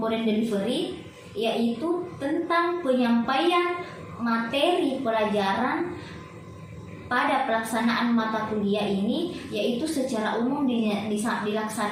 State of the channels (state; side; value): identical; both; correlation 1.00